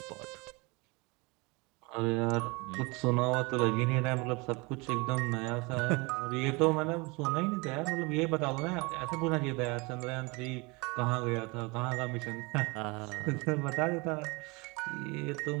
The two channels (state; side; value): quieter; left; 26.8 dB